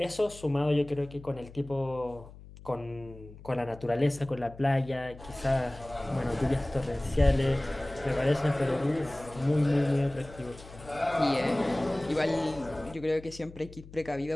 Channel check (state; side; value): noise; left; hum, 18 dB below the sound